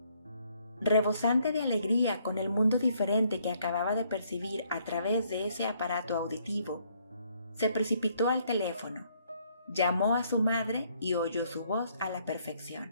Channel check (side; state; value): both; inverted; correlation -0.68